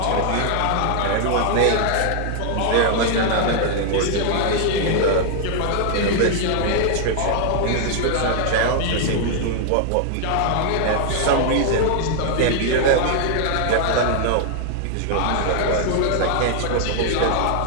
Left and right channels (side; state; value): both; different; correlation 0.00